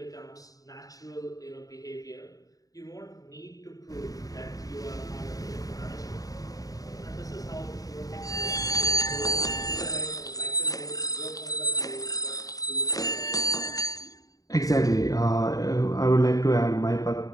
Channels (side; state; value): right; late; 0.17 ms